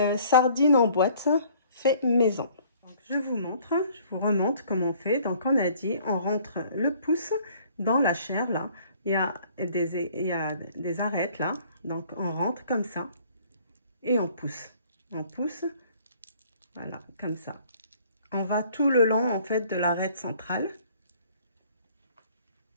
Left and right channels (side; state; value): both; inverted; correlation -0.57